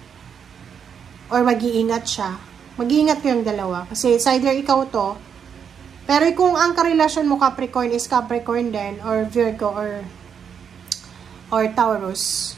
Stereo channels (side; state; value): left; quieter; 7.4 dB